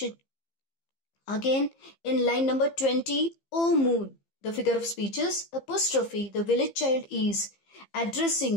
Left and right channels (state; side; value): late; right; 15 ms